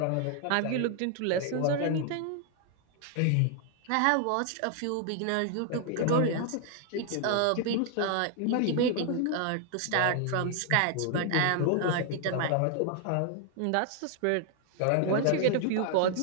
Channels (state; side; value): different; both; correlation 0.00